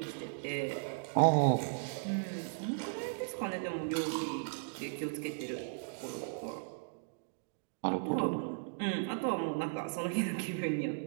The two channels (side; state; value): left; silent; digital silence